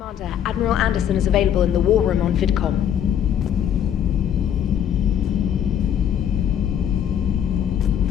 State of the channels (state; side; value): quieter; right; 9.4 dB